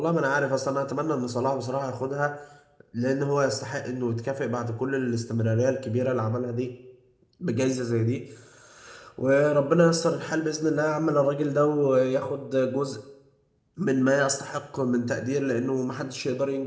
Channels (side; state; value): both; identical; correlation 1.00